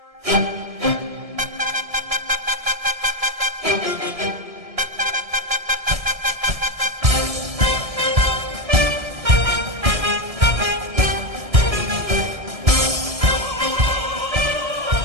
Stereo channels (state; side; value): late; left; 1.6 ms